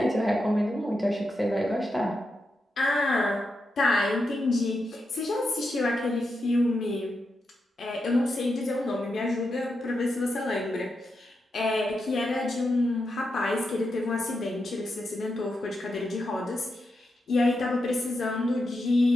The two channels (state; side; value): normal; both; correlation 0.86